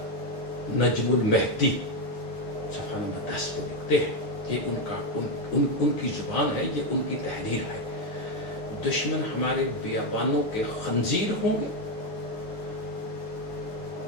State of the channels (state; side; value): late; right; 9.6 ms